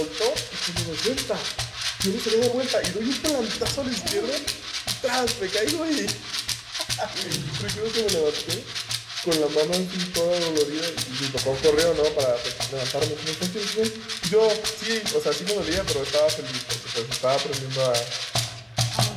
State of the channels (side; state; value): both; identical; correlation 1.00